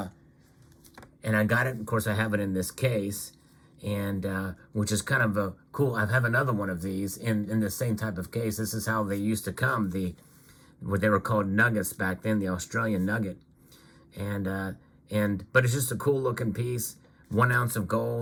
got it, of course, I have it in this case, and which is kind of a cool. I have another one of these in the same type of case. This is how they used to come, what they were called nuggets back then, the Australian nugget. But it's just a cool looking piece, 1 ounce of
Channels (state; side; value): identical; both; correlation 1.00